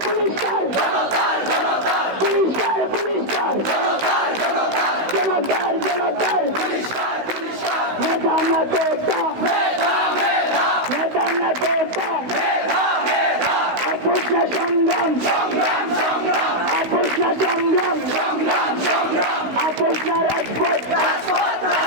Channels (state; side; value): late; left; 16 ms